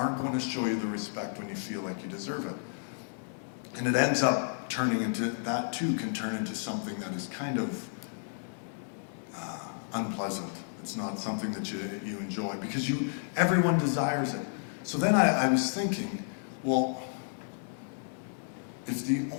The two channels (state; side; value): silent; right; digital silence